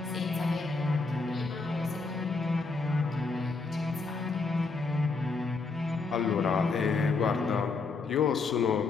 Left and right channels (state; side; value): quieter; right; 4.1 dB